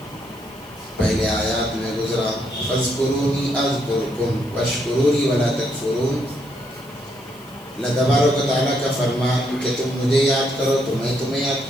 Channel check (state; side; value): noise; left; hiss, 25 dB below the sound